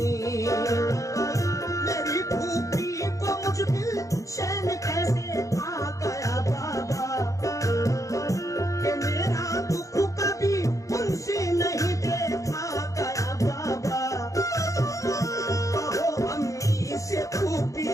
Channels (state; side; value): late; right; 0.16 ms